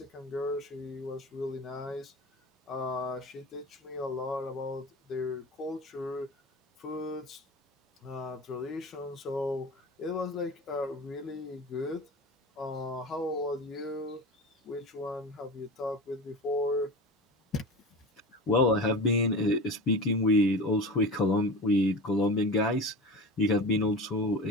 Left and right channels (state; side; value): normal; both; correlation 0.31